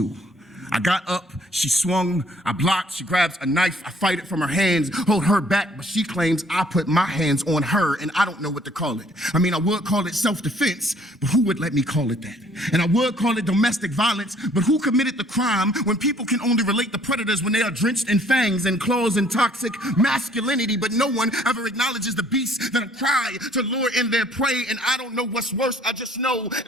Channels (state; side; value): normal; both; correlation 0.60